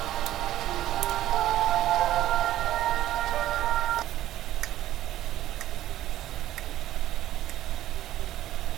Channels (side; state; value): left; quieter; 13.7 dB